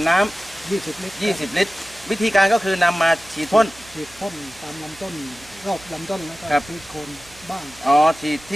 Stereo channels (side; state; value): right; noise; hum, 24 dB below the sound